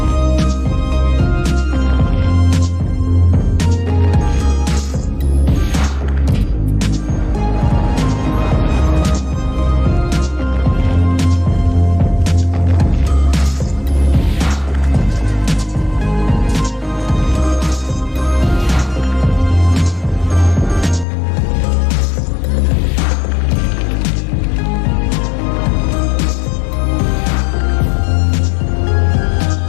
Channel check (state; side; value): drops out; right; at 21.1 s